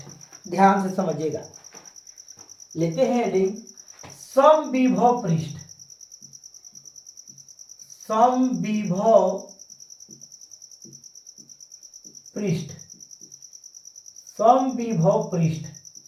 ध्यान से समझिएगा। लेते हैं हेडिंग समविभव पृष्ठ। समविभव पृष्ठ, समविभव पृष्ठ।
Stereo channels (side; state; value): both; identical; correlation 1.00